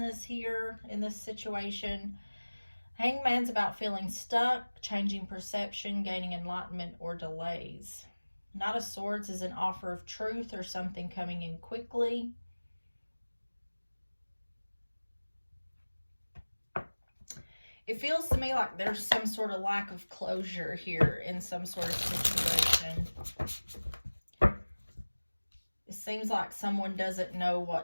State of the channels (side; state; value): both; inverted; correlation -1.00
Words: here in this situation. Hangman's about feeling stuck, changing perception, gaining enlightenment, or delays. Knight of Swords is an offer of truth or something coming in quickly. It feels to me like there's some sort of lack of closure here in some sort of situation. It seems like someone doesn't know